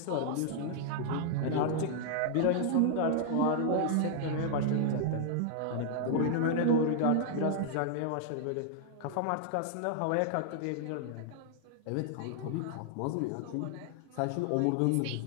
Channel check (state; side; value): different; both; correlation -0.01